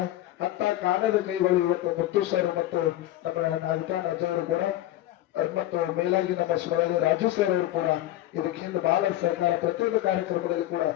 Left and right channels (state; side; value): quieter; right; 14.5 dB